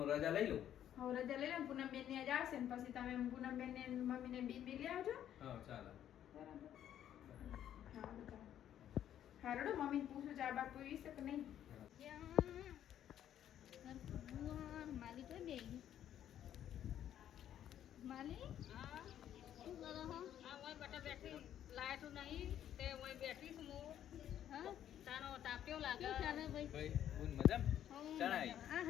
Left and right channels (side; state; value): right; quieter; 10.7 dB